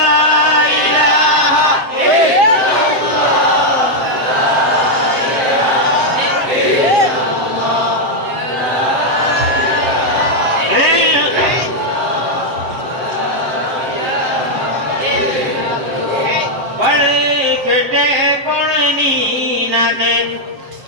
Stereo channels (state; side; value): late; left; 7.7 ms